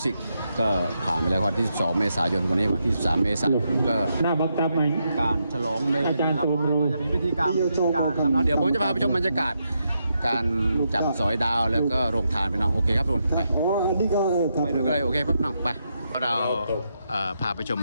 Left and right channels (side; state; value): both; inverted; correlation -0.82